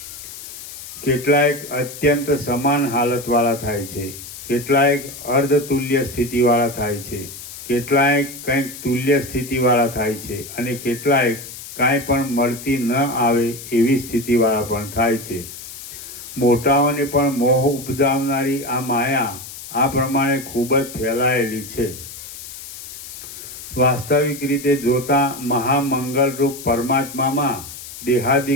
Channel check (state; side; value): noise; left; hiss, 12 dB below the sound